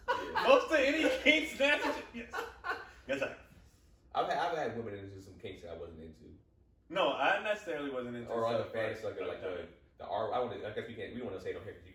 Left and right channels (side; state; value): both; identical; correlation 1.00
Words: Yeah. Most of any kink snatches, yes. Yes, I. I've had women into some kinks that I wasn't into. No, I necessarily wasn't into. Or other fantasy like the R. I guess we don't want to say it on here because you